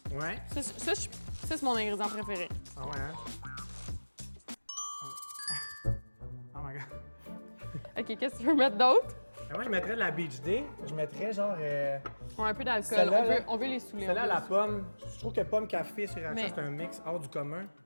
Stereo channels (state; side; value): inverted; both; correlation -1.00